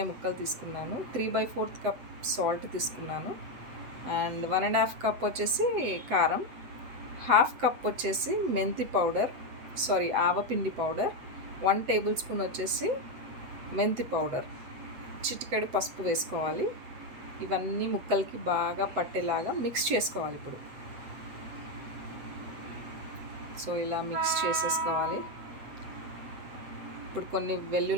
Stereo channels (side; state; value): left; late; 8.0 ms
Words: ముక్కలు తీసుకున్నాను, 3/4 కప్ సాల్ట్ తీసుకున్నాను, అండ్ 1.5 కప్ వచ్చేసి కారం, హాఫ్ కప్ వచ్చేసి మెంతి పౌడర్, ఆవపిండి పౌడర్, 1 టేబుల్ స్పూన్ వచ్చేసి మెంతి పౌడర్, చిటికెడు పసుపు వేసుకోవాలి. ఇవన్నీ ముక్కలకి బాగా పట్టేలాగా మిక్స్ చేసుకోవాలి. సో ఇలా మిక్స్ చేసేసుకోవాలి. ఇప్పుడు కొన్ని